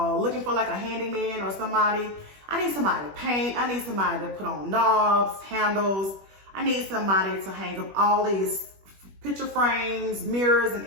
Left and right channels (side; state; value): left; late; 21 ms